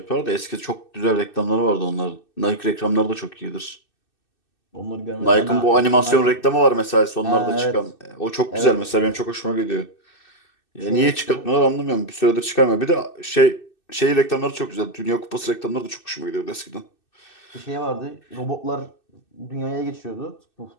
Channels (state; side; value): late; right; 2.6 ms